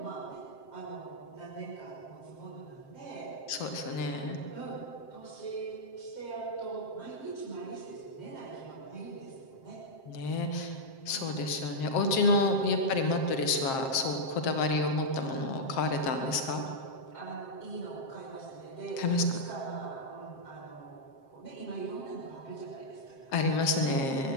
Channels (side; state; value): right; late; 7.6 ms